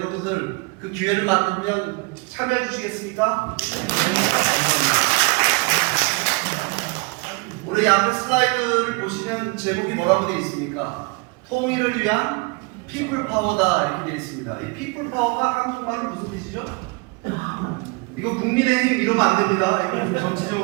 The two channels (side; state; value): left; quieter; 29.0 dB